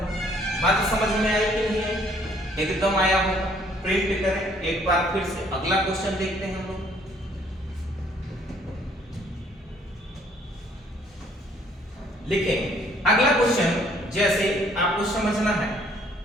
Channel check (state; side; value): normal; both; correlation 0.62